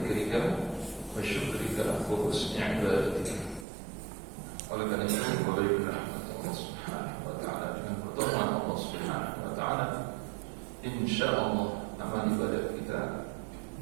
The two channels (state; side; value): drops out; left; at 3.7 s